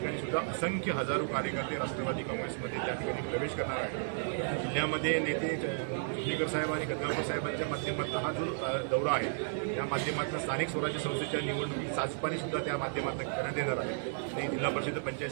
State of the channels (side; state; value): left; silent; digital silence